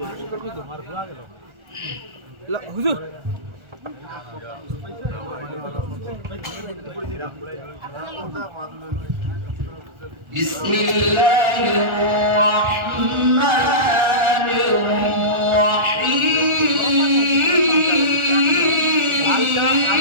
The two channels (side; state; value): left; late; 1.4 ms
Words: করে মার ভুয়া গেল হুজুর বিসমিল্লাহির রহমানির